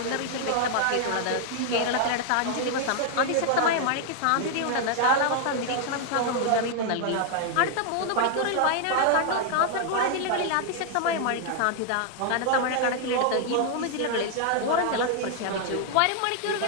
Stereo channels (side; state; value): both; different; correlation 0.00